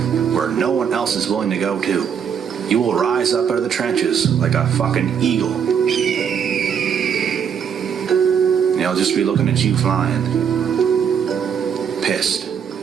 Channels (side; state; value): left; quieter; 7.7 dB